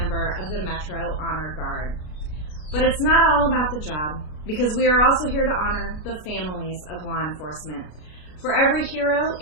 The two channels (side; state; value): right; late; 33 ms